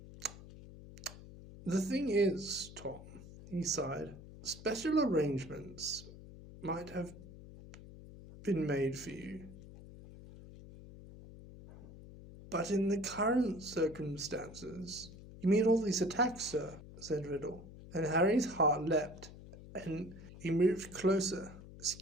"The thing is, Tom," he sighed, "special arrangements might have been made for you. But in the current circumstances—" "You mean all these attacks, sir?" said Riddle. And Harry's heart leapt, and he moved closer,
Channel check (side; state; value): left; noise; hum, 16 dB below the sound